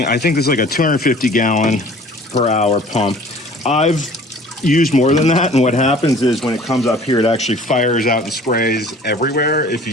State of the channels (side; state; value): both; normal; correlation 0.48